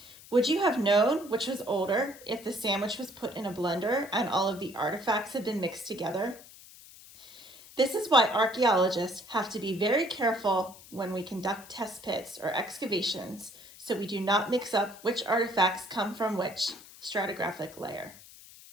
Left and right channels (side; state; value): left; noise; hiss, 20 dB below the sound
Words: Would you have known which was older if the sandwich was put in a blender and all of the artifacts had been mixed together? This is why archaeologists have to be very careful when we conduct test pits or excavations so we do not mix up which artifacts come from which stratigraphic layer.